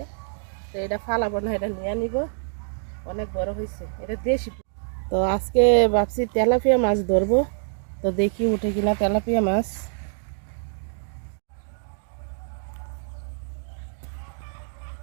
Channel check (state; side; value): silent; left; digital silence